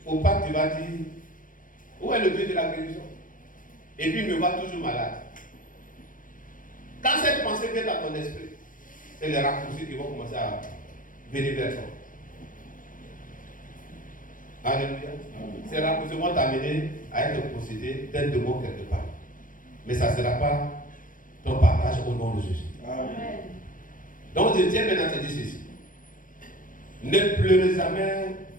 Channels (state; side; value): late; right; 0.39 ms